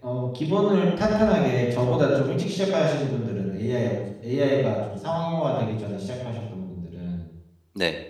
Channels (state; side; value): identical; both; correlation 1.00